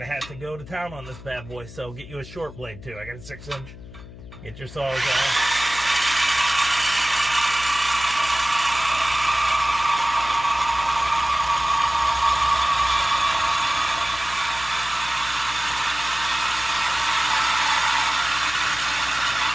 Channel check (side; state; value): left; noise; hum, 16 dB below the sound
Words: have to go to town on this bad boy. So get you a short blade too. I got a 6-inch. Get your saws out.